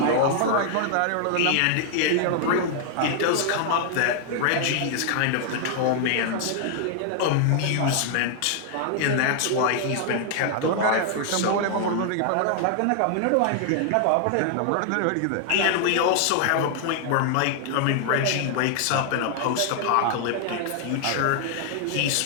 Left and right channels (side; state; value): both; different; correlation 0.00